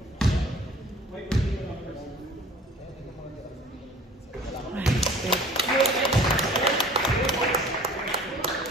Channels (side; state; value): both; normal; correlation 0.48